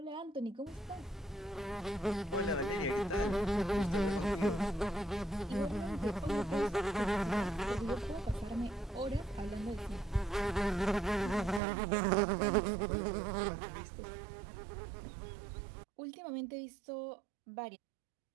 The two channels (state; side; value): drops out; left; at 11.6 s